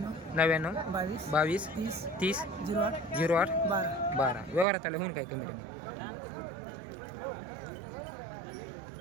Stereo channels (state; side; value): drops out; left; at 4.7 s